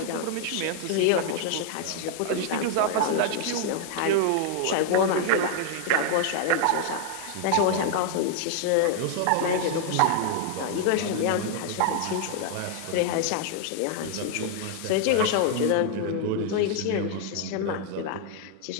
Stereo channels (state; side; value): different; both; correlation 0.00